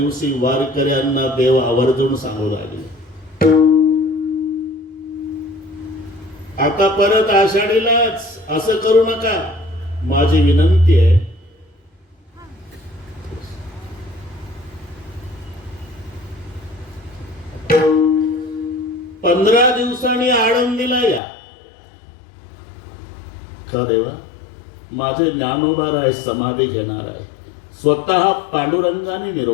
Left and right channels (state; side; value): drops out; right; at 21.2 s